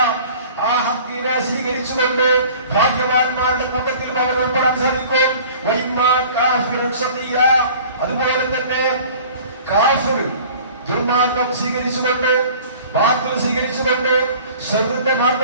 ആ ഹഖിനെ സ്വീകരിച്ചുകൊണ്ട് ഭാഗ്യവാന്മാരുടെ കൂട്ടത്തിൽ അവൻ ഉൾപ്പെടാൻ സാധിക്കും. വ ഇമ്മാ കാഫിറൻ ശഖിയ, അതുപോലെ തന്നെ കാഫിർ ദുർമാർഗം സ്വീകരിച്ചുകൊണ്ട് ബാത്തിൽ സ്വീകരിച്ചുകൊണ്ട് ശർറിന്റെ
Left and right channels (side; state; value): both; inverted; correlation -0.46